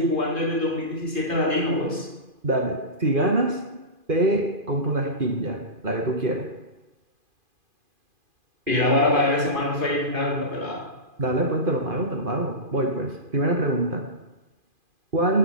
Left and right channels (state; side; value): late; left; 2.5 ms